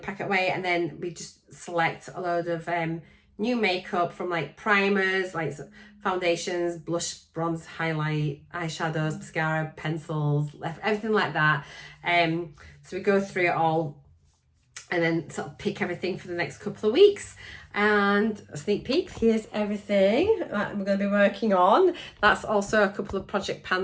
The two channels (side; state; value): both; identical; correlation 1.00